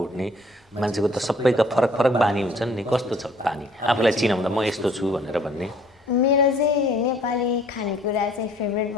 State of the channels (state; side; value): normal; both; correlation 0.58